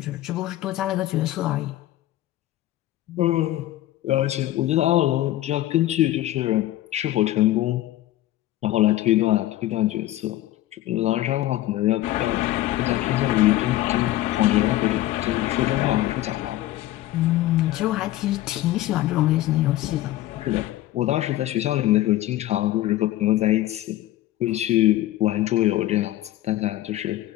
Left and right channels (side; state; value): right; quieter; 15.1 dB